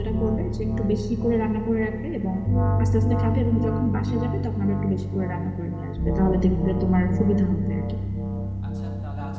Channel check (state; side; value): identical; both; correlation 1.00